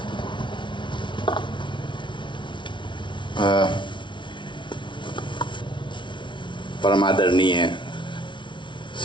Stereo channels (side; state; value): right; late; 0.24 ms